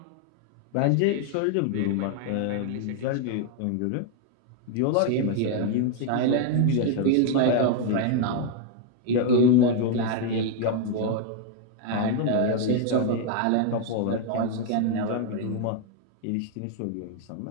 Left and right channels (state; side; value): different; both; correlation 0.00